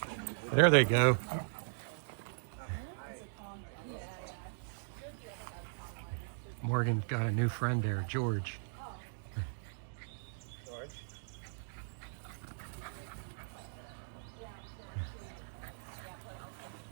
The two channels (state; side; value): silent; left; digital silence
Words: There they go. Morgan's got a new friend there, George.